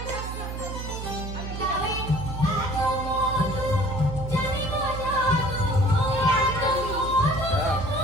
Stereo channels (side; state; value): right; noise; hum, 7 dB below the sound